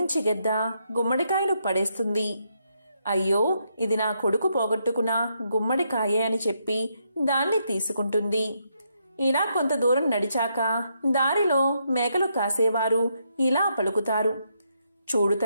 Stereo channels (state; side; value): inverted; both; correlation -0.77